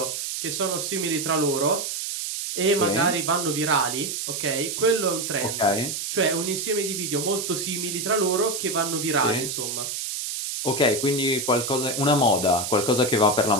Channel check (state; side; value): noise; right; hiss, 4 dB below the sound